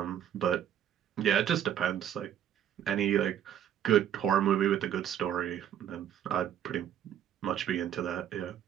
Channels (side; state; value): left; quieter; 10.2 dB